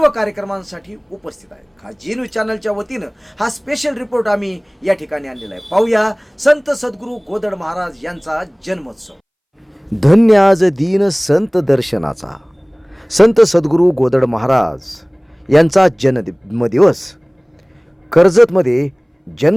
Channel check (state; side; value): identical; both; correlation 1.00